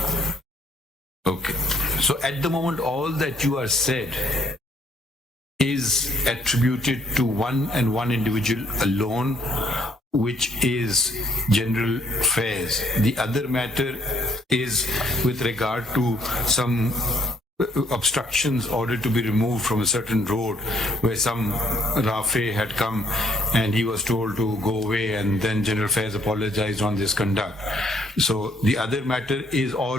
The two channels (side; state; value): both; normal; correlation 0.66